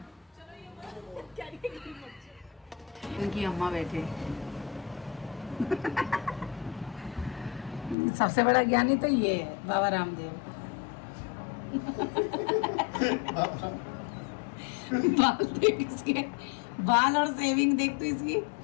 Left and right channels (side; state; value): right; drops out; at 8.0 s